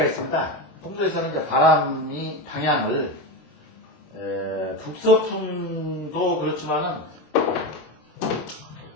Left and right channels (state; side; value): late; right; 26 ms